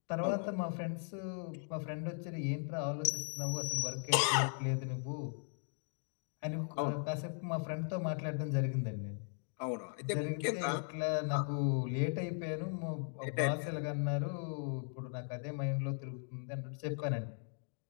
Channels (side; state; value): right; silent; 52 dB below the other